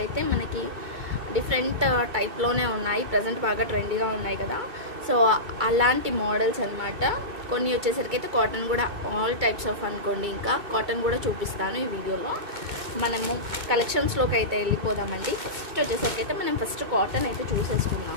అయితే మనకి డిఫరెంట్ టైప్లోనే ఉన్నాయి. ప్రజెంట్ బాగా ట్రెండీగా ఉన్నాయి కదా, సో అలాంటి మోడల్స్ అనమాట. కొన్ని వచ్చేసరికి అయితే కాటన్ కూడా ఆల్ టైప్స్ ఆఫ్ అనుకోండి. ఇంకా కాటన్ కూడా చూపిస్తాను ఈ వీడియోలో. మనము కలెక్షన్స్లోకి అయితే వెళ్ళిపోదామండి. ఫస్ట్ వచ్చేసరికి అయితే మనం ఫస్ట్ కాటన్ అయితే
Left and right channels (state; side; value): late; left; 2.3 ms